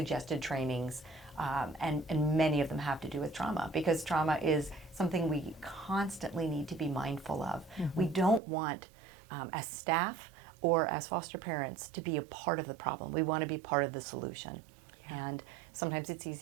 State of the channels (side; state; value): left; drops out; at 8.4 s